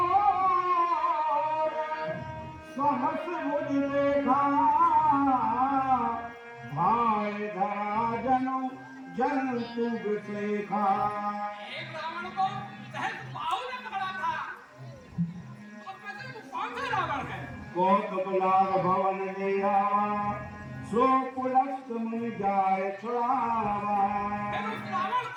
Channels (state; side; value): identical; both; correlation 1.00